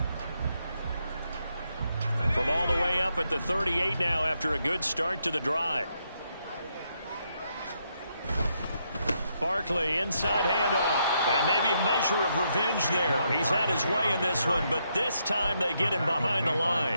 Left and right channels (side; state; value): both; inverted; correlation -0.78